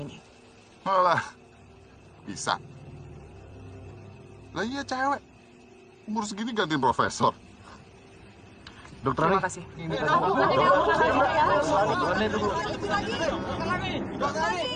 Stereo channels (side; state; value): both; identical; correlation 1.00